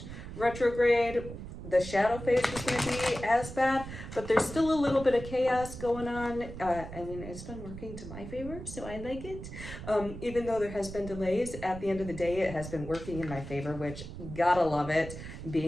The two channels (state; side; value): noise; right; rumble, 10 dB below the sound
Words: retrograde the shadow phase was going to be as bad, but there's still a little bit of chaos going on. I mean, it's been working to my favor, so I like it. Even though there has been delays, at the end of the day, it has been working in my favor, which gotta love it,